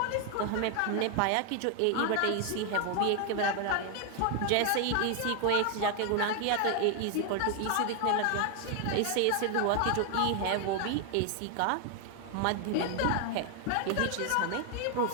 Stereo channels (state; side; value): different; both; correlation 0.00